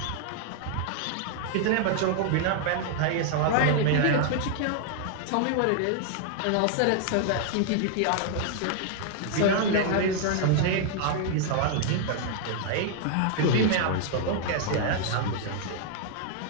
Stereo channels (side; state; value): both; different; correlation 0.00